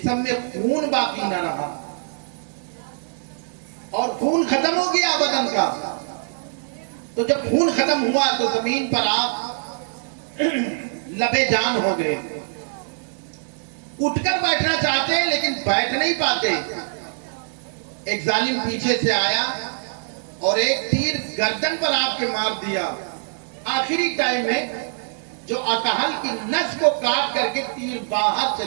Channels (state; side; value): silent; left; digital silence